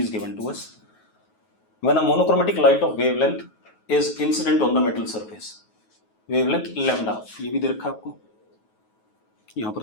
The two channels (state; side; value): late; right; 9.3 ms